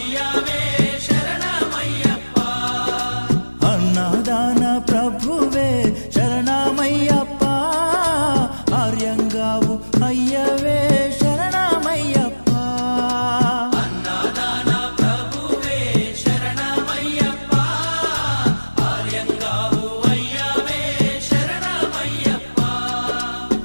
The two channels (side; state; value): both; inverted; correlation -1.00